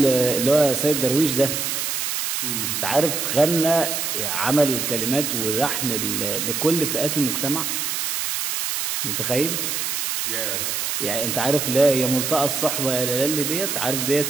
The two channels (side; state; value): right; noise; hiss, 1 dB below the sound